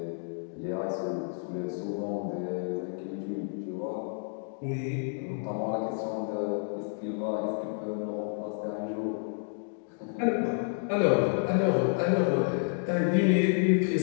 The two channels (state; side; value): silent; right; 58 dB below the other